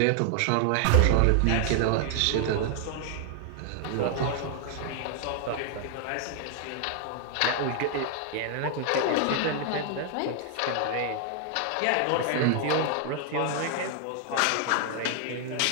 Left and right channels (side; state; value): both; different; correlation 0.00